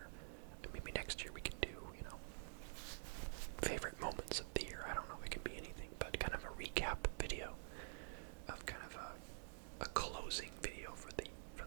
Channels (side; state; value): left; silent; digital silence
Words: And maybe next year we can do, favorite moments of the year. I don't know. It can be anything. But kind of a recap video of kind of a closing video for the